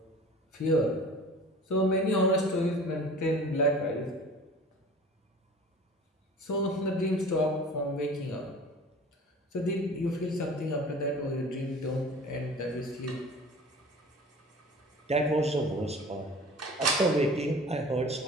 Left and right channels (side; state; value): both; normal; correlation 0.42